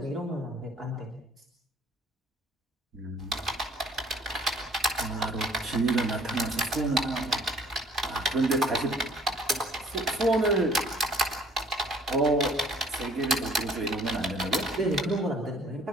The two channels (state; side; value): normal; both; correlation 0.57